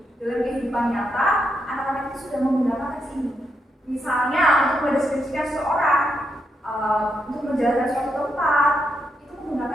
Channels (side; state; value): both; normal; correlation 0.81